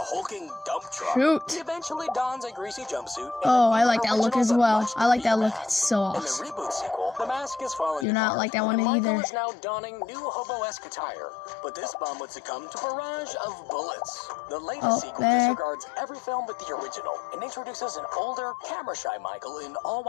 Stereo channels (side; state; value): right; drops out; at 8.1 s